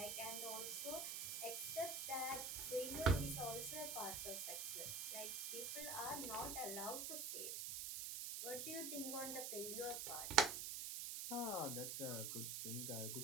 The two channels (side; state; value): right; noise; hiss, 2 dB below the sound